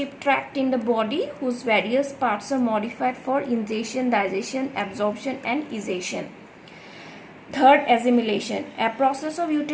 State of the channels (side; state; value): both; identical; correlation 1.00